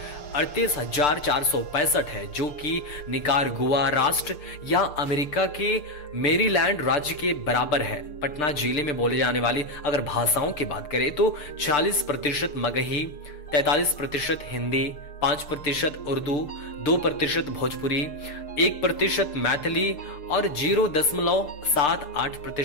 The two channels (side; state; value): right; late; 6.8 ms